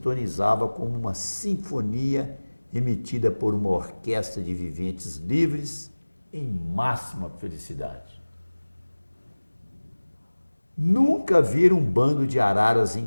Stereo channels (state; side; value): inverted; both; correlation -1.00